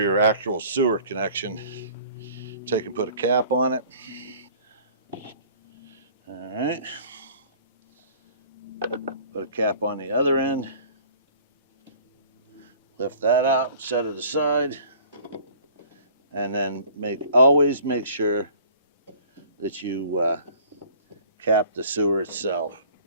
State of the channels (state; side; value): inverted; both; correlation -0.50